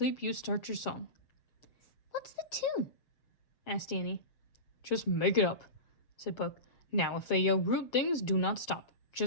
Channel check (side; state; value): right; late; 7.5 ms